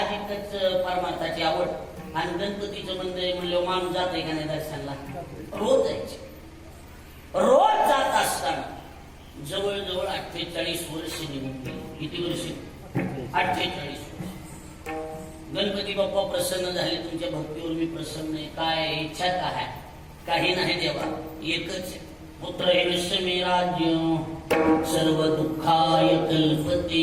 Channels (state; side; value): identical; both; correlation 1.00